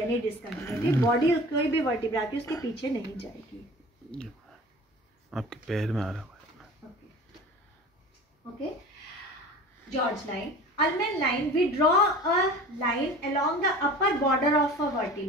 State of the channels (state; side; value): normal; both; correlation 0.40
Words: any discontinuity. Body कोई भी vertebra की उसके पीछे नहीं जाएगी। आपके पैर में आ रहा है। Okay, George line. Ullmann line, we draw a line along the upper border of a